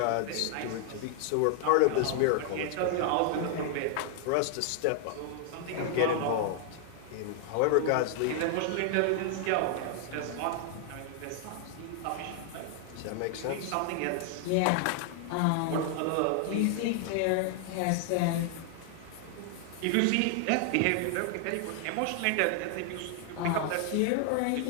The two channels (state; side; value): different; both; correlation 0.00